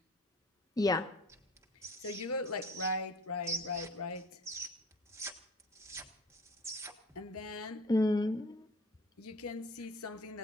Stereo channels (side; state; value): both; normal; correlation 0.45